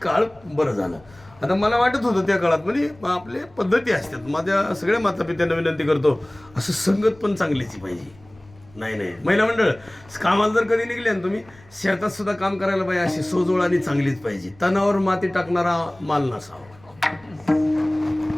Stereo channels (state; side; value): noise; left; rumble, 26 dB below the sound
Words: काळ बरं झालं. आता मला वाटत होतं त्या काळात म्हणजे आपले पद्धती असतात. माझ्या सगळ्या मातापित्यांना विनंती करतो असं संगत पण चांगलीची पाहिजे. नाही महिला मंडळ कामाला जर कधी निघले ना तुम्ही शेतात सुद्धा काम करायला पाहिजे अशी सोजवळ आणि चांगलीच पाहिजे. तणावर माती टाकणारा माल नसावा.